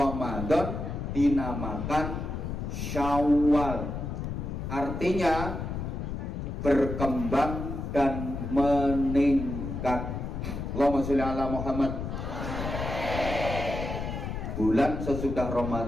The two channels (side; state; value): left; noise; rumble, 5 dB below the sound